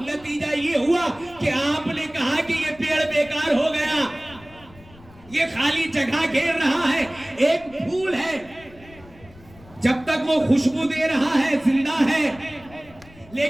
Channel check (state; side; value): noise; left; rumble, 23 dB below the sound